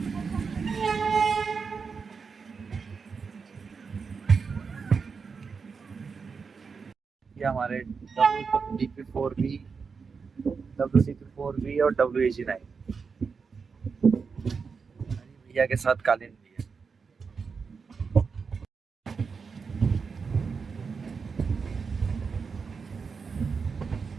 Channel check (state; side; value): quieter; left; 5.3 dB